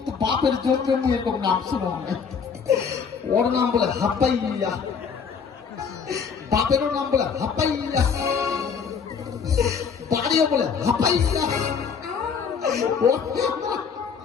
তো বাপের জন্য এরকম নাম শুনো ওর নাম বলে হাপ্পাইয়া বাপেরও নাম বলে হাপ্পাইয়া বাড়িও বলে হাপ্পাইয়া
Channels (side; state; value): right; quieter; 6.2 dB